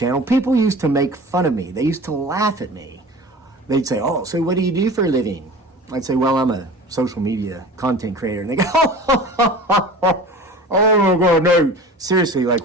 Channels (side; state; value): both; normal; correlation 0.38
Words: people used to make fun of me. They used to laugh at me. They'd say, oh, so what do you do for a living? I'd say, well, I'm a social media content creator. And they go, oh my God, no. Seriously,